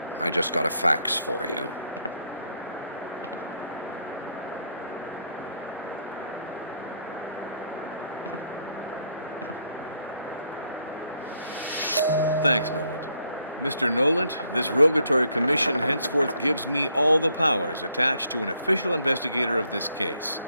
I just got a fax for you. Thanks, Noland. Mr. Noland, this Rogatory Commission henceforth gives me all the powers attached to an official investigator of this case.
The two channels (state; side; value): inverted; both; correlation -0.72